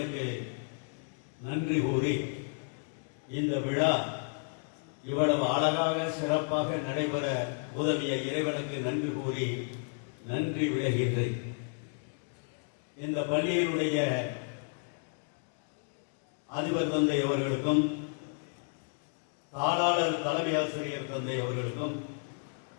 நன்றி கூறி இந்த விழா இவ்வளவு அழகாக சிறப்பாக நடைபெற உதவிய இறைவனுக்கு நன்றி கூறி நன்றி விளைகின்றேன். இந்த பள்ளியினுடைய அதிபர் தந்தை அவர்களுக்கும், தாளாளர் தலைமை ஆசிரியர் தந்தை அவர்களுக்கும்,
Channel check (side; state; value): right; silent; 56 dB below the other